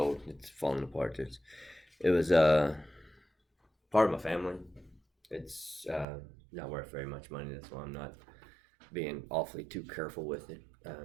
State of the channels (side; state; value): left; drops out; at 6.1 s